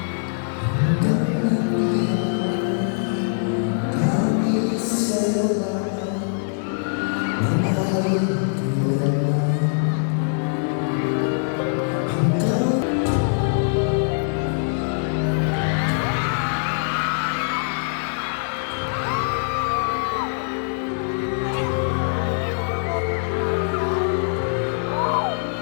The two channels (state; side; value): silent; right; digital silence